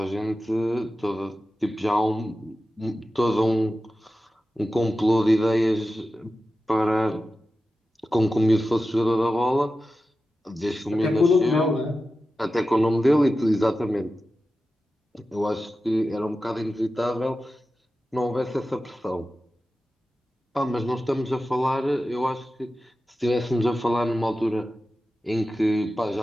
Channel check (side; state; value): both; normal; correlation 0.93